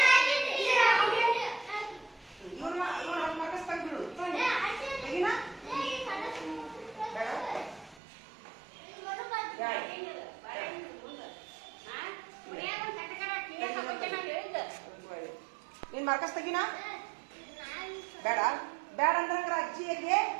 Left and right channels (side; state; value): left; drops out; at 8.0 s